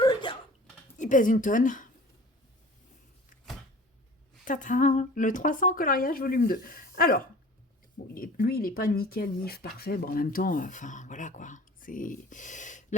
Il pèse une tonne. Tata, le 300 coloriage volume 2. Alors, bon, lui, il n'est pas nickel, nif, parfait. Bon, en même temps, enfin, voilà quoi.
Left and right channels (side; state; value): both; normal; correlation 0.44